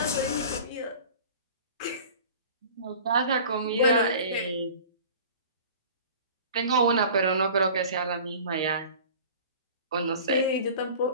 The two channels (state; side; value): inverted; both; correlation -0.42